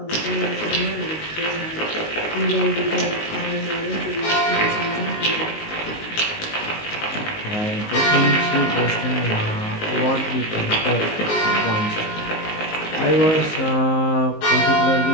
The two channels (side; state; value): right; late; 19 ms